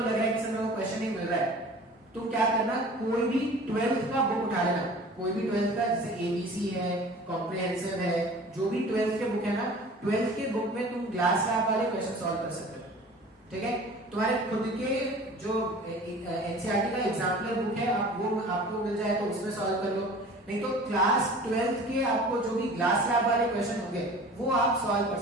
लग रहा है कि सर वो क्वेश्चन नहीं मिल रहा है, तुम क्या करना, कोई भी 12th का बुक उठा लेना। कोई भी 12th का, जैसे एबीसी है, कॉम्प्रिहेंसिव है, जो भी 12th के बुक है ना, 12th के बुक में तुम ग्लास लैब वाले क्वेश्चन सॉल्व कर सकते हो। ठीक है, तुम्हारे खुद के जो एनसीईआरटी का एग्जाम्पलर बुक है वो आपको मिल जाए तो उसमें सॉल्व कर लो, नहीं तो क्लास 12th के आपको जो भी ग्लास लैब वाले क्वेश्चन होंगे वो आप सॉल्व कर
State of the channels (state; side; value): normal; both; correlation 0.43